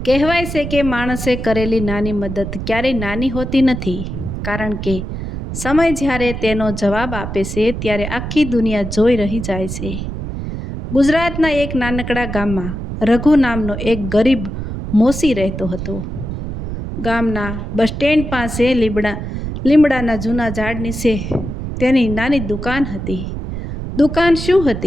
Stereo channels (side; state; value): right; noise; rumble, 6 dB below the sound